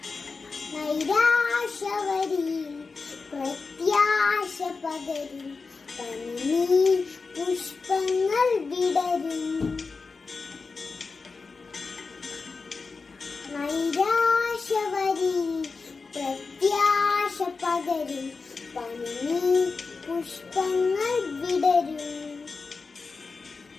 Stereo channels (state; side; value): quieter; right; 4.4 dB